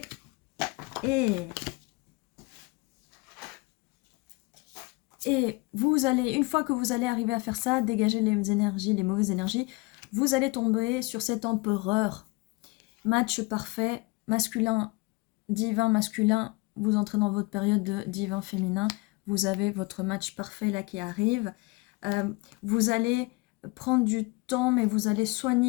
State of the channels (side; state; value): right; quieter; 25.5 dB